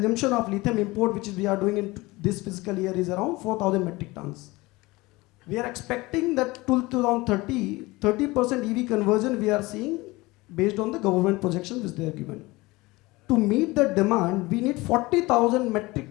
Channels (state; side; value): quieter; right; 21.6 dB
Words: of lithium import, which is we are doing in this fiscal year, is around 4,000 metric tons. We are expecting that till 2030, 30% EV conversion we are seeing based on the government projections which they are given. To meet the demand, we need 40,000